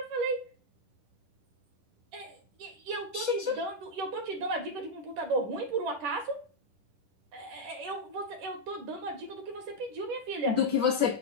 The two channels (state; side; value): late; left; 10 ms